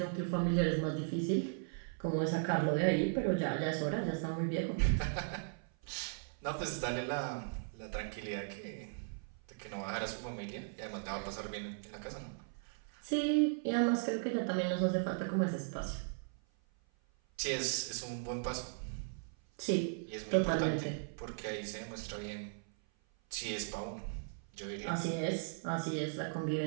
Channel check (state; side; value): silent; left; 53 dB below the other